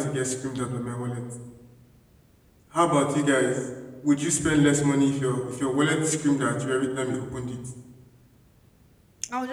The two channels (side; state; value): both; identical; correlation 1.00